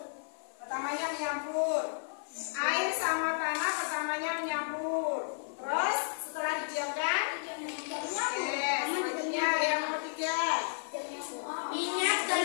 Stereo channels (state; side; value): silent; right; 56 dB below the other